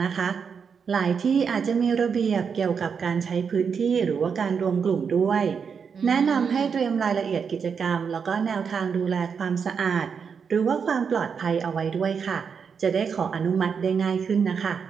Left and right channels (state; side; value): quieter; left; 6.3 dB